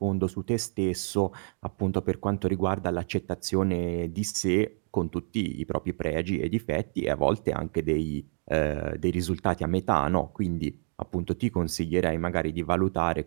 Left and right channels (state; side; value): silent; left; digital silence